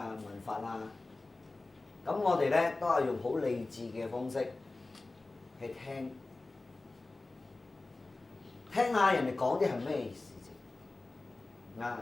聞法啊，咁我哋咧都係用好理智嘅方式去聽下人哋講啲係咩事情啊，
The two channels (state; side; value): quieter; right; 3.2 dB